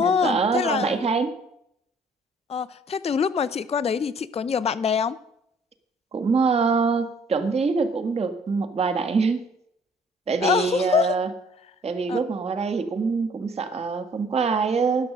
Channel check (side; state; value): both; normal; correlation 0.58